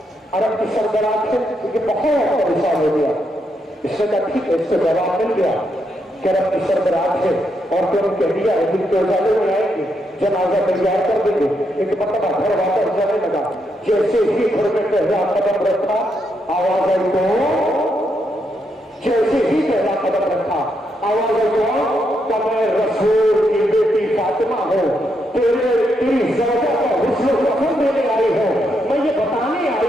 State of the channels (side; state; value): both; normal; correlation 0.79